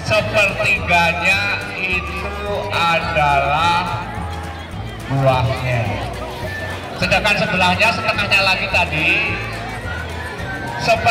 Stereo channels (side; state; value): both; identical; correlation 1.00